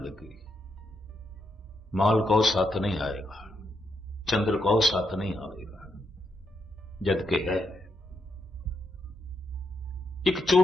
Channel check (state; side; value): normal; both; correlation 0.80